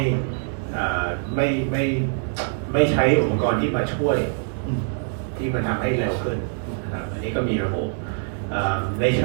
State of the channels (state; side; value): silent; left; digital silence